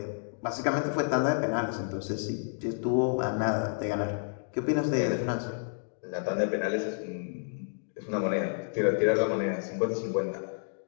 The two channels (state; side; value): silent; right; digital silence